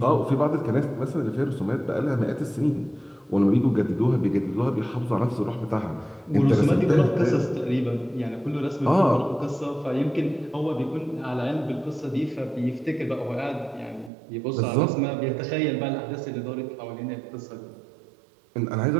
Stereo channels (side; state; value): left; drops out; at 14.1 s